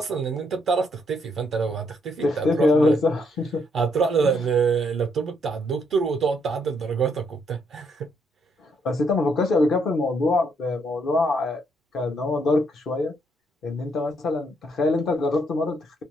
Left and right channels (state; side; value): normal; both; correlation 0.73